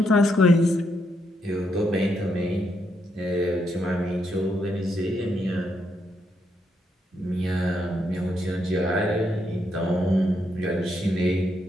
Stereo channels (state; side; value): normal; both; correlation 0.78